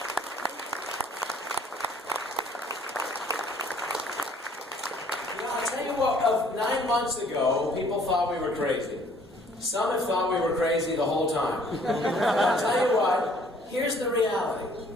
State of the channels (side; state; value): both; normal; correlation 0.59